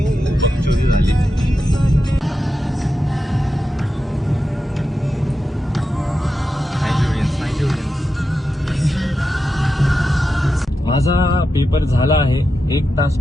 माझा पेपर झाला आहे. 1 तास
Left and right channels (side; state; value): both; normal; correlation 0.89